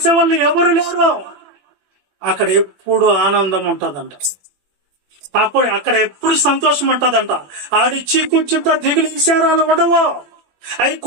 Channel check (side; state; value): left; late; 21 ms